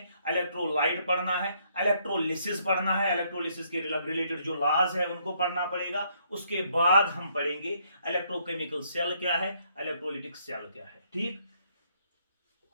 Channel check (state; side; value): inverted; both; correlation -0.70